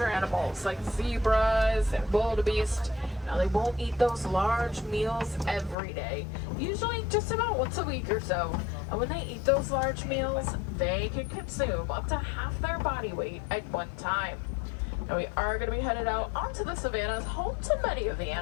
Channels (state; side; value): drops out; right; at 5.8 s